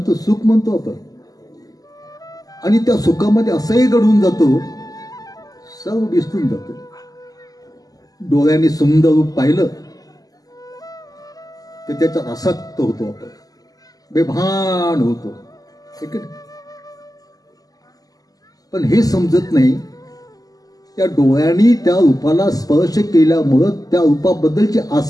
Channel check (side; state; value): right; late; 0.17 ms